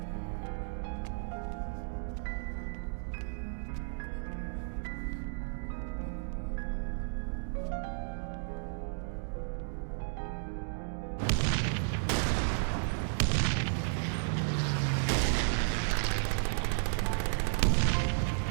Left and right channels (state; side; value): silent; left; digital silence